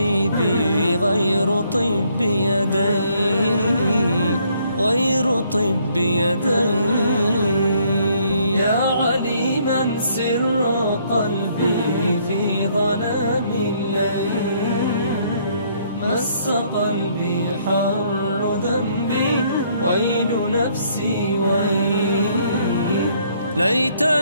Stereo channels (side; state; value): both; inverted; correlation -0.67